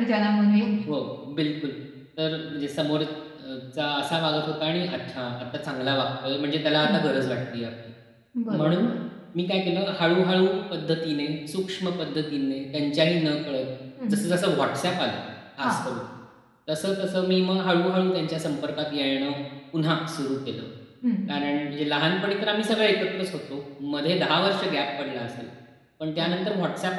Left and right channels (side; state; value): both; identical; correlation 1.00